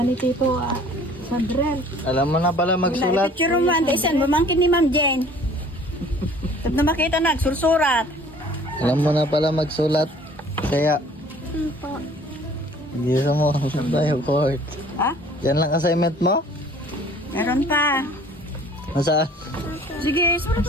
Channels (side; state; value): both; normal; correlation 0.51